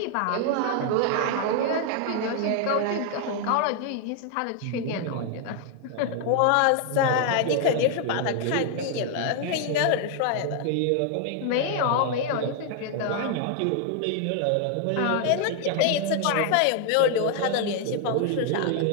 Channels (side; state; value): both; different; correlation 0.00